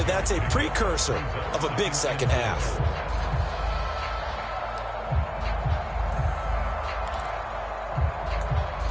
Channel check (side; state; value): both; identical; correlation 1.00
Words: that's a precursor of a big second half.